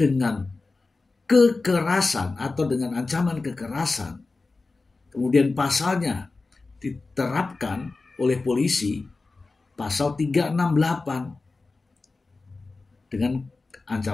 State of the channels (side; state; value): right; quieter; 3.7 dB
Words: dengan kekerasan atau dengan ancaman kekerasan, kemudian pasalnya diterapkan oleh polisi, pasal 368 dengan